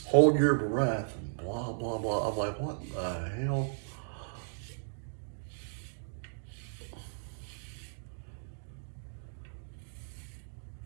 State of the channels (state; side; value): silent; left; digital silence